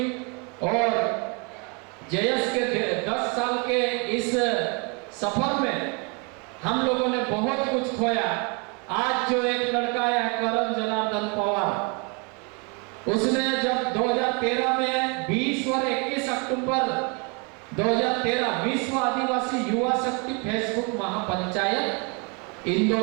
और जेएस के 10 साल के इस सफर में हम लोगों ने बहुत कुछ खोया। आज जो एक लड़का है करण जनार्दन पवार, उसने जब 2013 में 20 और 21 अक्टूबर 2013 विश्व आदिवासी युवा शक्ति फेसबुक महापंचायत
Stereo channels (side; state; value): left; quieter; 32.9 dB